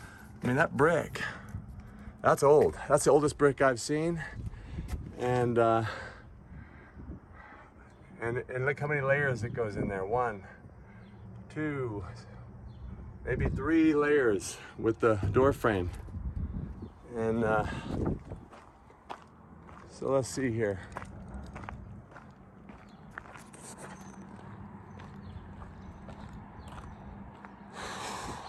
I mean, that brick, that's old. That's the oldest brick I've seen. And look how many layers it goes in there. 1, 2, maybe 3 layers with the door frame. And so let's see here.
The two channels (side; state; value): both; identical; correlation 1.00